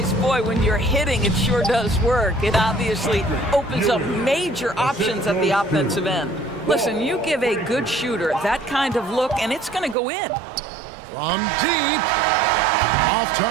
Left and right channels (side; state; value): left; drops out; at 10.0 s